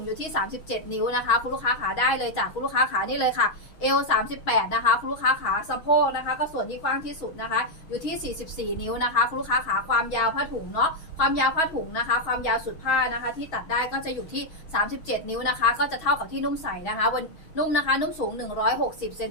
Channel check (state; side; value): late; right; 6.3 ms